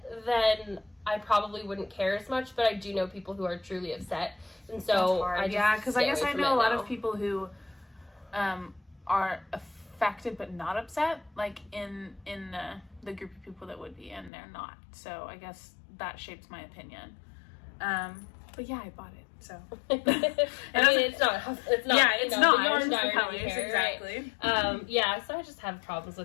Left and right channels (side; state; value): right; drops out; at 14.3 s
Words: then I probably wouldn't care as much, but I do know people who are truly upset, and so because I guess I know a lot of people who are affected but not upset, like in the group of people that would be, and they're not. So I guess that shapes my opinion. But yeah, I bought it. So I mean, it's not. Yeah, it's not. The yarn it's colors, exactly. Right? Yeah, so I just have problems